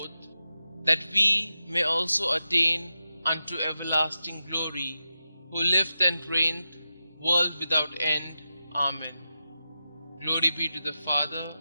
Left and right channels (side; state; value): both; inverted; correlation -0.90